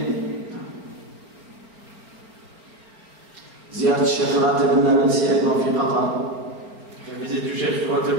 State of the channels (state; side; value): late; left; 4.1 ms